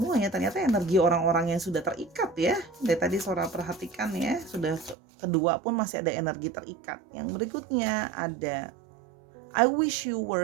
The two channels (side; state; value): left; drops out; at 5.0 s